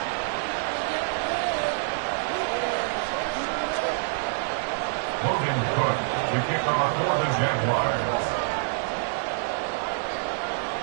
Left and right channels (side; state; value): left; silent; 60 dB below the other